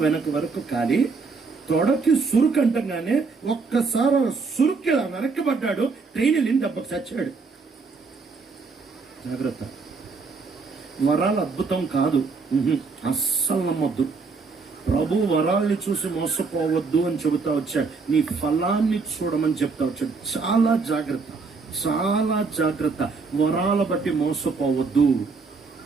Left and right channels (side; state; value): left; quieter; 4.5 dB